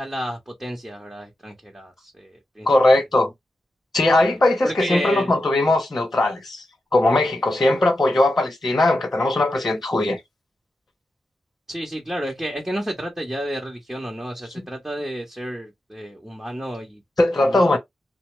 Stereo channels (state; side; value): normal; both; correlation 0.89